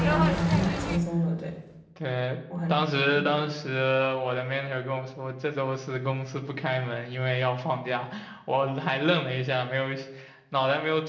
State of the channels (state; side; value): identical; both; correlation 1.00